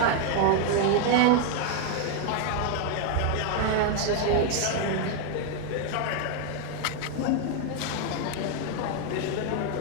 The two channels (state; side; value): different; both; correlation 0.01